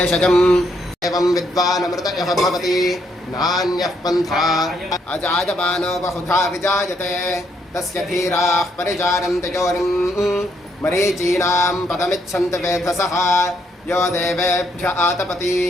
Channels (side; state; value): both; normal; correlation 0.74